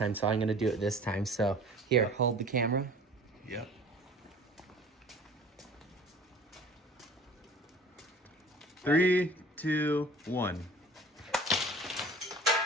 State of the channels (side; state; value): both; normal; correlation 0.46